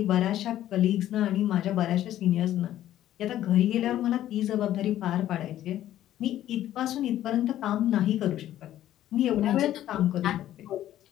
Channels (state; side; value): quieter; right; 12.7 dB